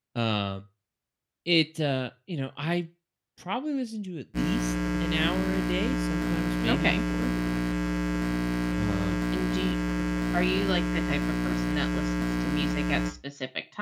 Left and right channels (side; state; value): both; identical; correlation 1.00